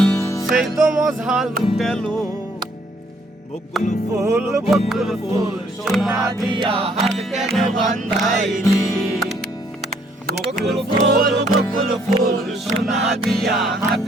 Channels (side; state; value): both; normal; correlation 0.65